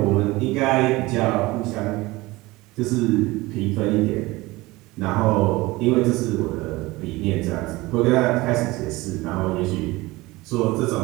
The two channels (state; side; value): quieter; left; 20.8 dB